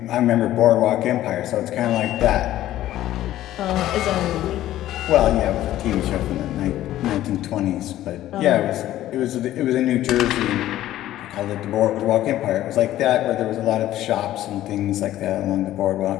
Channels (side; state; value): right; quieter; 13.8 dB